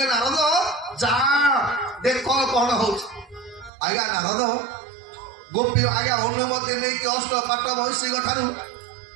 ନାରଦ ଯା ଦେଖ କଣ ହଉଛି। ଆଜ୍ଞା ନାରଦ ଗୋପୀ ଆଜ୍ଞା ଅନୁମତି ନେଇକି ଅଷ୍ଟପାଟ ମହିଷୀଙ୍କ ଠାରୁ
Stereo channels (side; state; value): left; drops out; at 3.7 s